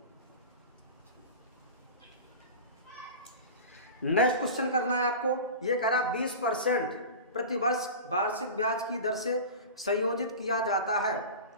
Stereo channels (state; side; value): inverted; both; correlation -0.32